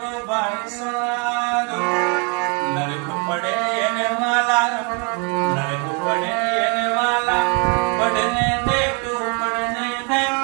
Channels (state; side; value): quieter; left; 33.2 dB